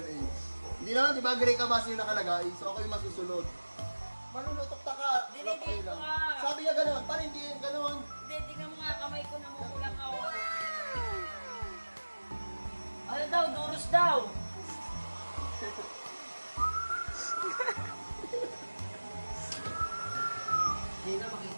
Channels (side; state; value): both; inverted; correlation -1.00